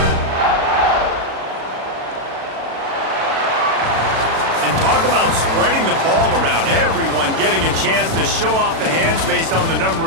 Talk about spreading the ball around. Everyone getting a chance to show off the hands based on the number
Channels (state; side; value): late; left; 36 ms